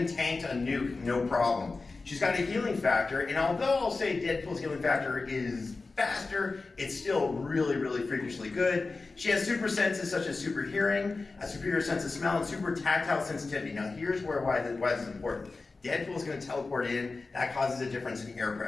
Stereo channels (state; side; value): quieter; right; 3.8 dB